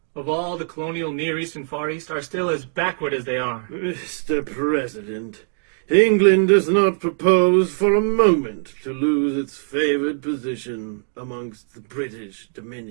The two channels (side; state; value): left; silent; digital silence